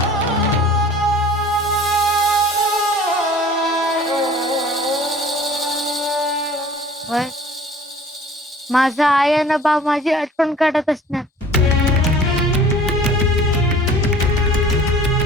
माझा आई आणि बाप माझी आठवण काढत असणार.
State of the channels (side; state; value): both; normal; correlation 0.47